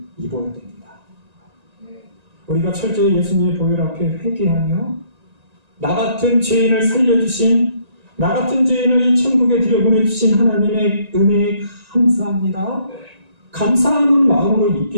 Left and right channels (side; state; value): left; late; 1.9 ms